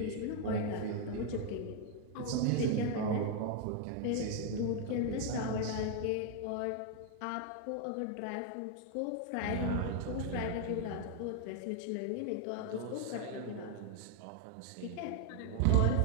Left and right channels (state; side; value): different; both; correlation 0.00